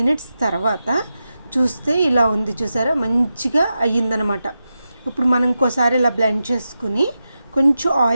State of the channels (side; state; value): both; inverted; correlation -0.91